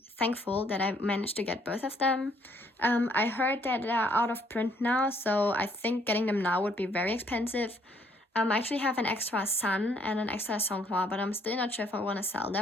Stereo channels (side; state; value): both; normal; correlation 0.66